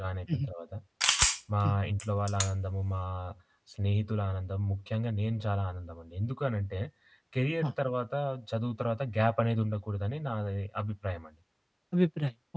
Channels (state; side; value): identical; both; correlation 1.00